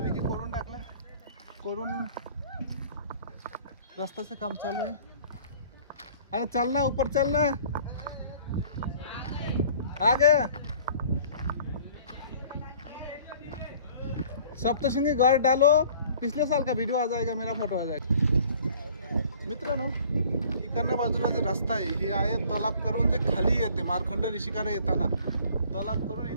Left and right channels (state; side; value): inverted; both; correlation -0.52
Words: करून टाकला, करून रस्त्याचं काम चालू आहे. अरे चल ना ऊपर चल ना, आ गया. सप्तशृंगी घाट डालो, पिछले साल का वीडियो आ जाएगा, मेरा फोटो आ जाएगा. मित्रांनो इकडनं बाजूला जे रस्ता आहे हे आहे तलाब करून जे खाली येते मार्कंड ऋषीकडे येताना तलाब करून